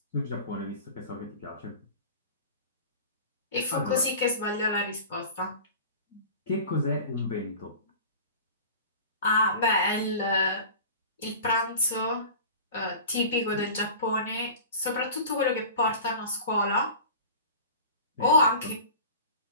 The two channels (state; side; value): inverted; both; correlation -0.38